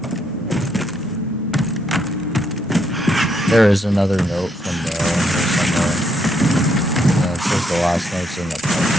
There is another note from the... it says the last note's in the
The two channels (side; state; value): both; normal; correlation 0.74